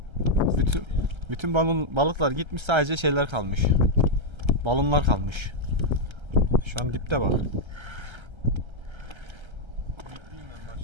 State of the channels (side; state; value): left; late; 1.3 ms